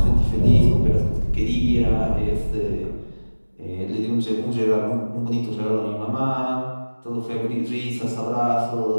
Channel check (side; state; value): both; inverted; correlation -1.00